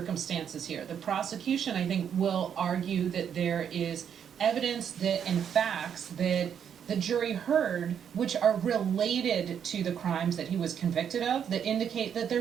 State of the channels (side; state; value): left; quieter; 8.3 dB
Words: here. The prosecution, I think, will argue that there is evidence that and facts that the jury heard, which are related to the crimes that he was convicted of, that indicate that